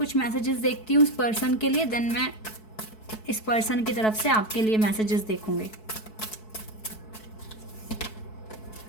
मैसेजेस देखती हूँ उस पर्सन के लिए, देन मैं इस पर्सन की तरफ से आपके लिए मैसेजेस देखूँगी।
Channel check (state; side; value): late; right; 4.6 ms